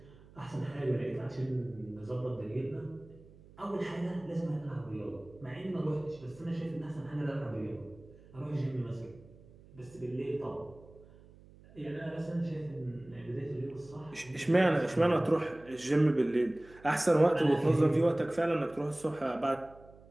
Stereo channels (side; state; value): right; noise; hum, 23 dB below the sound